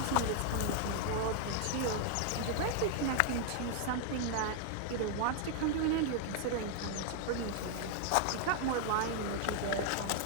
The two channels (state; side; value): different; both; correlation 0.00